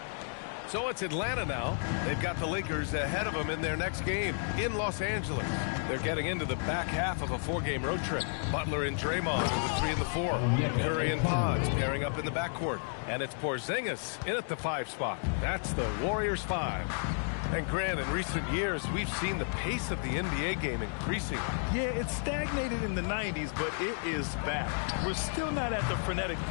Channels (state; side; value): silent; right; 56 dB below the other